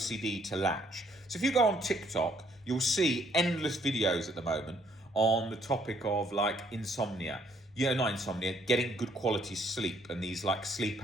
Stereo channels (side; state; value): both; normal; correlation 0.66